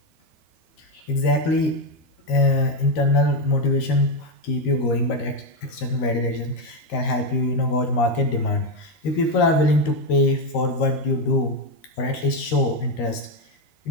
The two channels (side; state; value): right; late; 13 ms